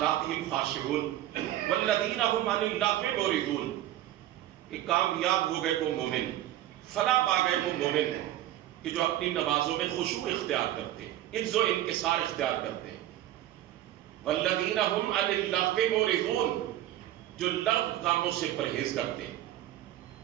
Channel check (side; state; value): left; quieter; 13.4 dB